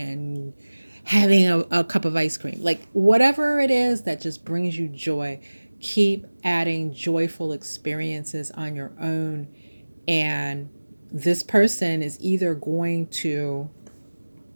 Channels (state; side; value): inverted; both; correlation -1.00